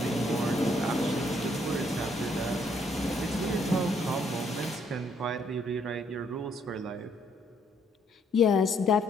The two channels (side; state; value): both; normal; correlation 0.69